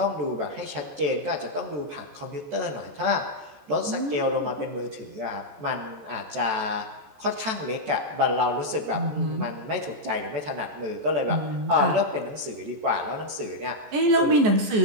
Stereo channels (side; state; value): left; late; 14 ms